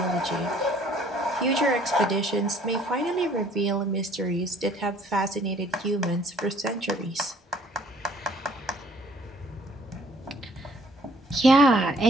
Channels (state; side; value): normal; both; correlation 0.59